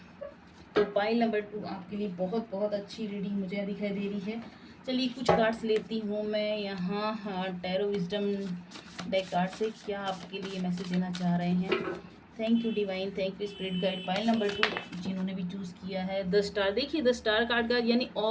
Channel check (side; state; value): both; identical; correlation 1.00